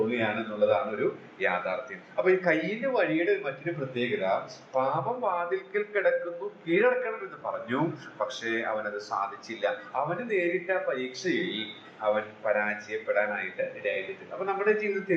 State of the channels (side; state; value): both; identical; correlation 1.00